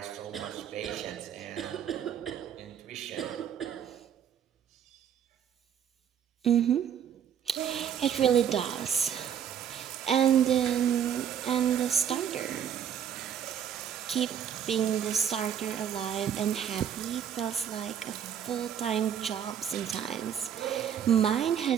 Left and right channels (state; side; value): quieter; left; 8.8 dB